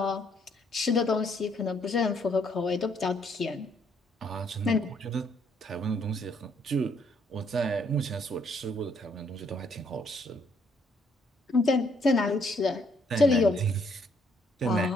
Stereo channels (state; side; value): normal; both; correlation 0.69